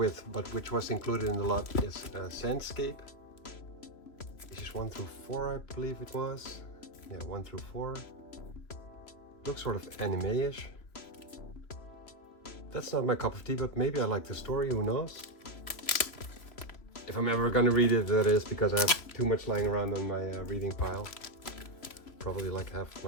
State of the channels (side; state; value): right; late; 2.9 ms